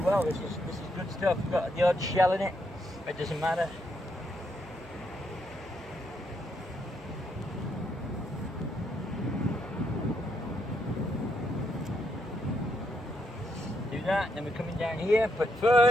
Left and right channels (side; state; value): both; normal; correlation 0.77